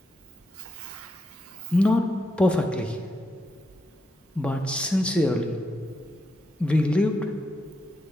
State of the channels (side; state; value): both; normal; correlation 0.83